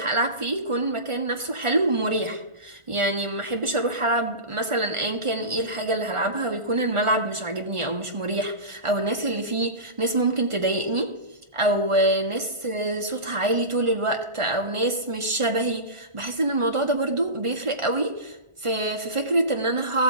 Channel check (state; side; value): late; left; 1.4 ms